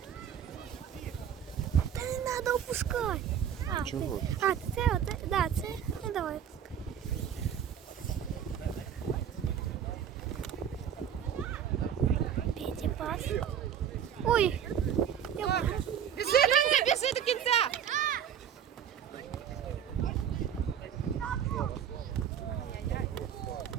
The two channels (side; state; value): left; quieter; 8.9 dB